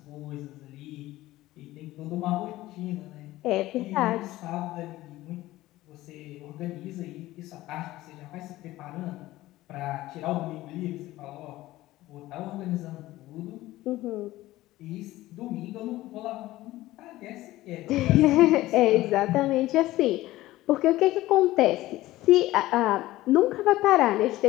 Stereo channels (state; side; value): quieter; right; 16.8 dB